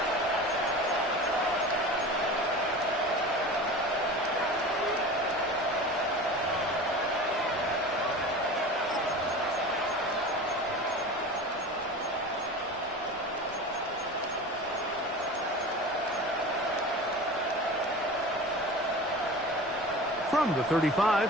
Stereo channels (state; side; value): normal; both; correlation 0.34